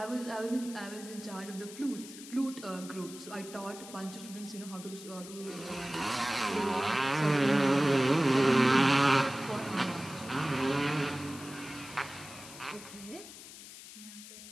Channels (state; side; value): noise; left; hiss, 15 dB below the sound